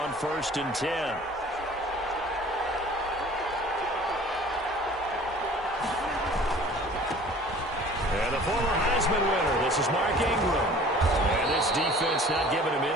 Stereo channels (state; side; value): normal; both; correlation 0.48